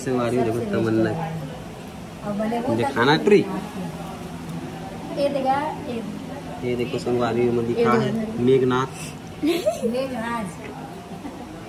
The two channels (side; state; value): both; identical; correlation 1.00